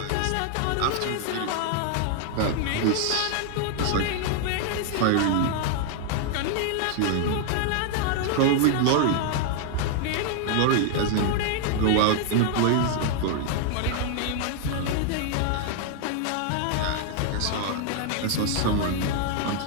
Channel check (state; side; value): different; both; correlation 0.00